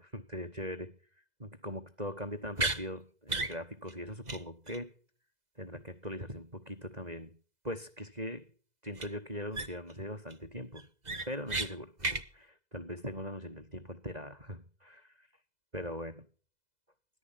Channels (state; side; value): late; left; 2.0 ms